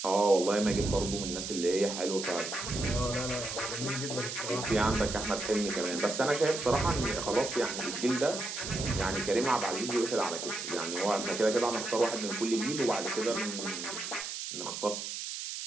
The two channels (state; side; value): noise; right; hiss, 6 dB below the sound